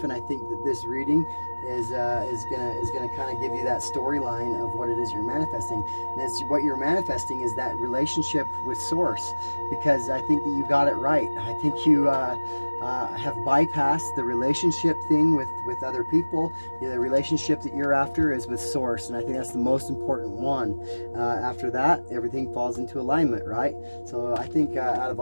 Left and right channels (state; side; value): inverted; both; correlation -1.00